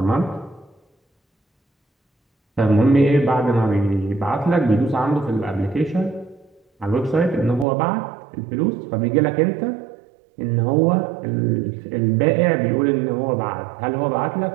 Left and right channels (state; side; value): drops out; left; at 7.7 s